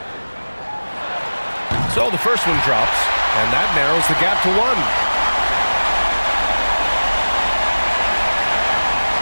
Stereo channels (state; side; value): inverted; both; correlation -1.00